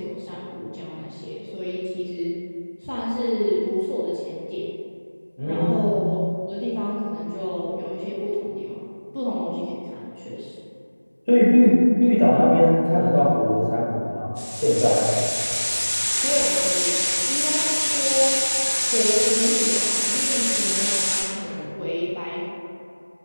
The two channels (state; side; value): inverted; both; correlation -1.00